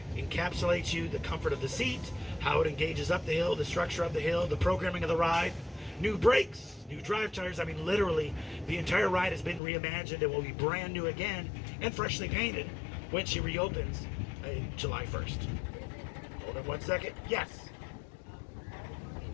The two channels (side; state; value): right; drops out; at 9.6 s